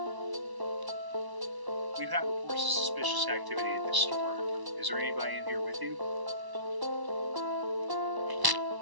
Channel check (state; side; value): late; left; 1.0 ms